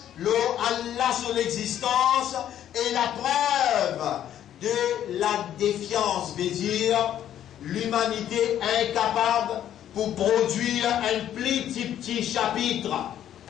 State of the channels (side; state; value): right; quieter; 10.9 dB